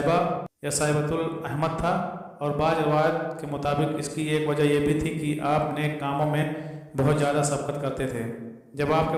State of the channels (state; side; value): identical; both; correlation 1.00